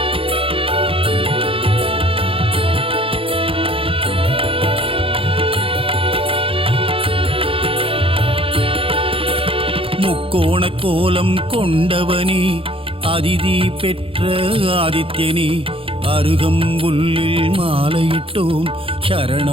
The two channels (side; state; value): left; late; 0.27 ms